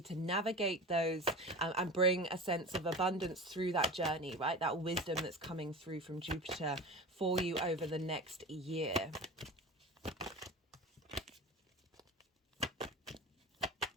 to navigate those and bring a sense of abundance through that journey, right? That wisdom that's coming through from Jupiter for you over the next year.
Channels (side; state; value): both; normal; correlation 0.31